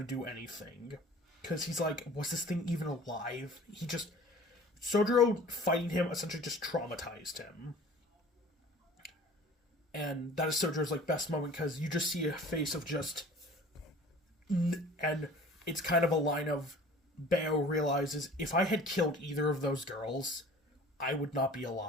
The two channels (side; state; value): both; normal; correlation 0.46